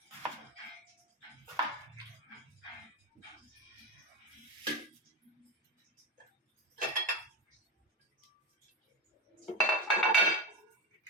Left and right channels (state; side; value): normal; both; correlation 0.17